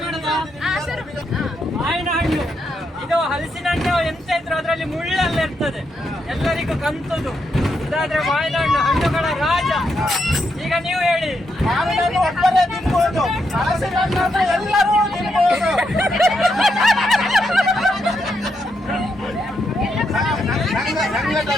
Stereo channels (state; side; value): normal; both; correlation 0.81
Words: ಮಾವಿನ ಹಣ್ಣು ಇದು ಹಲಸಿನ ಹಣ್ಣು ಎಂತ ಇದ್ರು ಅದರಲ್ಲಿ ಮುಳ್ಳೆಲ್ಲ ಇರ್ತದೆ, ಎಲ್ಲರಿಗೂ ಕಂತದು. ಇದಾದ್ರೆ ಮಾವಿನ ಹಣ್ಣು ಹಣ್ಣುಗಳ ರಾಜ. ಈಗ ನೀವು ಹೇಳಿ, ಮಾವಿನ ಹಣ್ಣು ಒಬ್ಬರೇ ತಿನ್ಬಹುದು, ಹಲಸಿನ ಹಣ್ಣು ಅಂದ್ರೆ ಎಲ್ಲರೂ ತಿನ್ಬಹುದು.